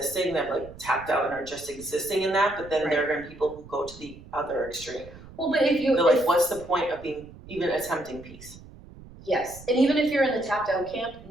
that like tapped out and are just existing in that, but then there are going to be people who go to the other extreme. Well, but if they're like, what's the point of being even attempting peace? Yes, and even if you're in the tapped out camp,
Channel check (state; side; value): noise; right; rumble, 18 dB below the sound